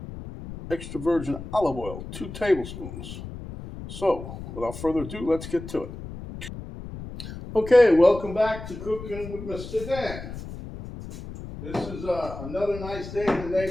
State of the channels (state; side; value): noise; left; rumble, 11 dB below the sound